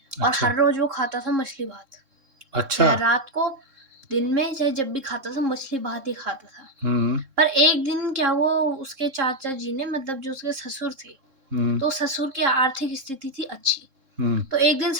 और अच्छा, हर रोज वो खाता था मछली भात। अच्छा, चाहे रात को, दिन में, चाहे जब भी खाता था मछली भात ही खाता था। हुँ, पर एक दिन क्या हुआ, उसके चाचा जी ने मतलब जो उसके ससुर थे, हुँ, तो ससुर की आर्थिक स्थिति थी अच्छी। हुँ, तो एक दिन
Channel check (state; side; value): late; left; 3.7 ms